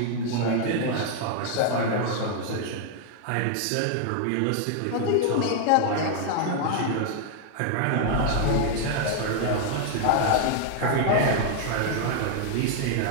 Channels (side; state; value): both; different; correlation 0.00